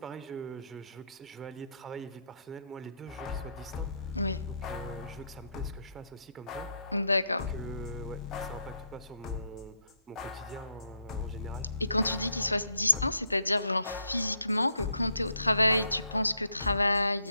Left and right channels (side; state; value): both; inverted; correlation -0.75